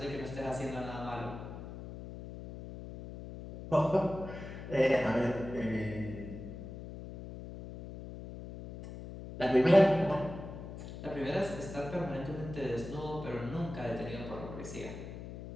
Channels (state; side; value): noise; left; hum, 11 dB below the sound